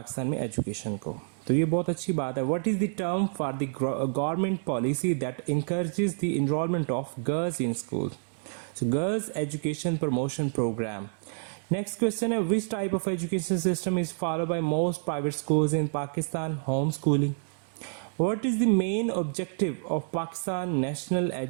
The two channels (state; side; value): silent; left; digital silence